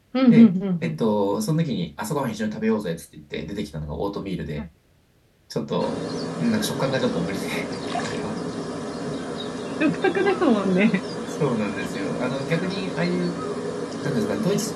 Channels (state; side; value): identical; both; correlation 1.00